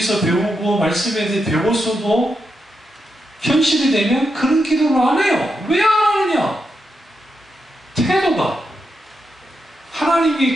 배우고 말씀에 대해 배웠어도 현실이 되면 그런 기도를 안 해요. 왜 안 하느냐? 태도가. 하나님이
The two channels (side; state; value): both; normal; correlation 0.85